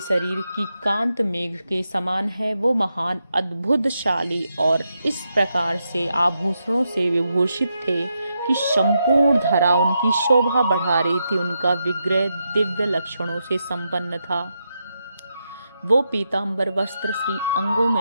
की कांत मेघ के समान है। वो महान अद्भुतशाली और इस प्रकार से आभूषणों से विभूषित थे कि संपूर्ण धरा उनकी शोभा बढ़ा रही थी। उनका विग्रह दिव्य लक्षणों से संपन्न था। वो पीतांबर वस्त्र श्री अंगों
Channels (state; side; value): inverted; both; correlation -0.85